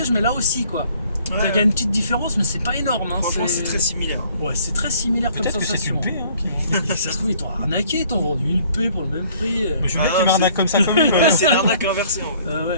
mais là aussi quoi. Ouais. Il y a une petite différence, mais c'est pas énorme. Hein, Franchement, c'est très similaire. Ouais, c'est très similaire comme Peut-être que c'est sensation. une paix, hein, qui... Et ça se trouve, ils t'ont arnaqué, ils t'ont vendu une paix pour le même prix. Mais je veux bien Ah, qu'il m'arnaque c'est- comme ça quand même. Ouais, c'est l'arnaque inversée en fait.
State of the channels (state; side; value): inverted; both; correlation -0.58